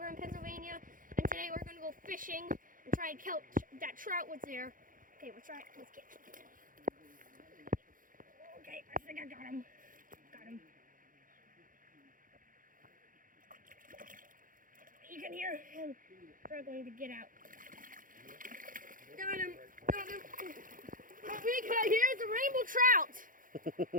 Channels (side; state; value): left; late; 0.40 ms